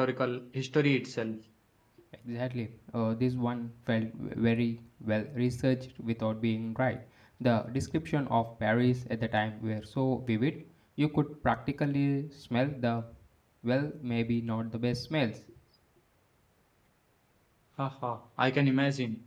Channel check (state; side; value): identical; both; correlation 1.00